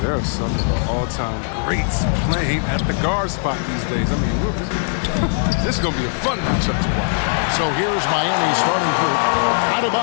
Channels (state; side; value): silent; right; digital silence